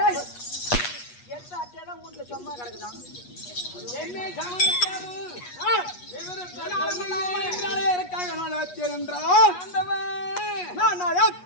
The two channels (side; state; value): right; late; 8.3 ms